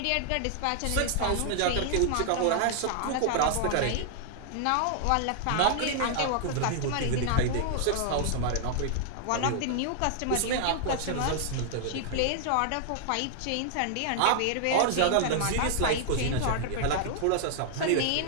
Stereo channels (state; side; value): different; both; correlation -0.01